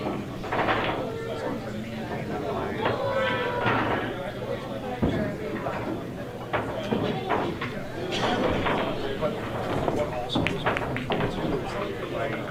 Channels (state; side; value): identical; both; correlation 1.00